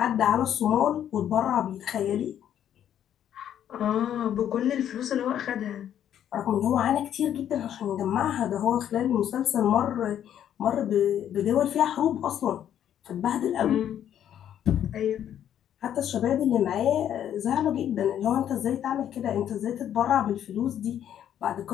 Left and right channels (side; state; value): right; quieter; 10.2 dB